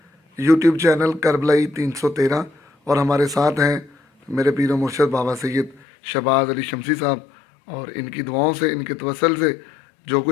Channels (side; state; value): right; drops out; at 5.8 s